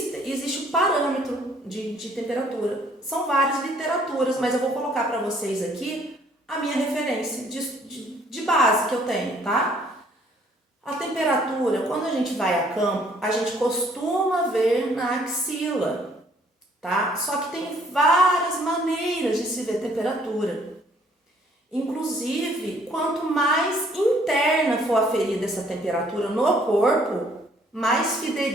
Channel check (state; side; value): normal; both; correlation 0.62